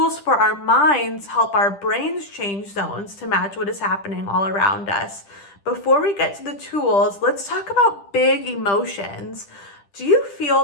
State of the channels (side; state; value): right; late; 10 ms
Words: for our minds help our brains change zones to match what is happening all around us. Before we get to the tools, let's talk about big emotions. Do you feel